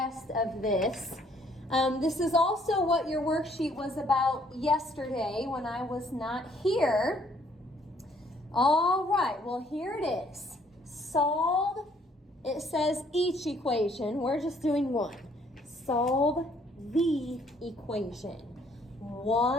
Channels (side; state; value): both; normal; correlation 0.64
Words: of this. This is also what your worksheet was about yesterday when I was not here. All right, well, here it is. Solve, it says each equation. We're just doing one. Solve the equation.